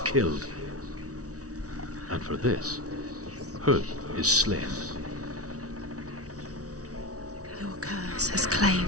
And for this, Huth is slain. Your curse has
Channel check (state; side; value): late; left; 0.67 ms